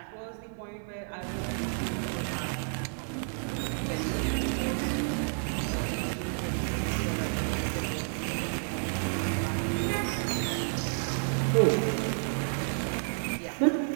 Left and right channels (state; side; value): silent; left; digital silence